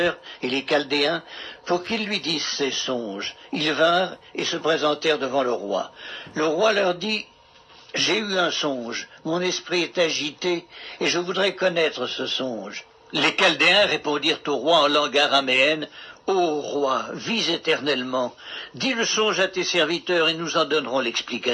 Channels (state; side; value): identical; both; correlation 1.00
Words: et les chaldéens pour qu'ils lui disent ses songes. Ils vinrent et se présentèrent devant le roi. Le roi leur dit, « J'ai eu un songe, mon esprit est agité et je voudrais connaître ce songe. » Les chaldéens répondirent au roi en langue araméenne, « Ô roi, vis éternellement, dis le songe à tes serviteurs et nous en donnerons